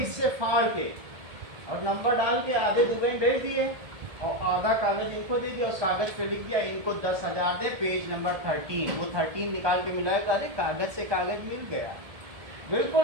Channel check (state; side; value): late; left; 1.7 ms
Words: फाड़ के और नंबर डाल के आधे दुबई भेज दिए और आधा कागज इनको दे दिया, उस कागज पे लिख दिया इनको 10,000 दे, पेज नंबर 13, वो 13 निकाल के मिलाया, अरे कागज से कागज मिल गया।